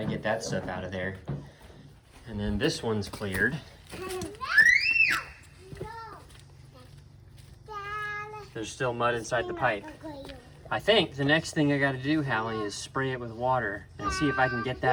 get that stuff out of there. And then this one's cleared. There's still mud inside the pipe. I think the next thing I gotta do, Hallie, is spray it with water and see if I can get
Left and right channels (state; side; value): identical; both; correlation 1.00